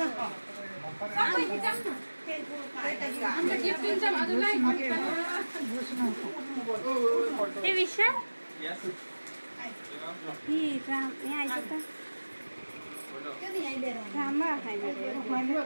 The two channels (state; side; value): inverted; both; correlation -1.00